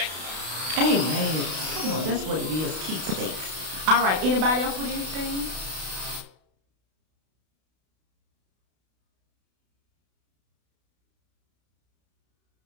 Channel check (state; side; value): late; left; 32 ms